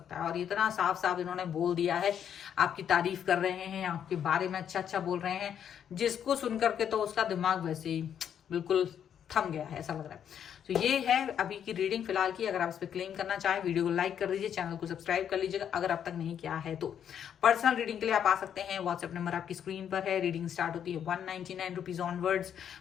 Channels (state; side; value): quieter; right; 8.9 dB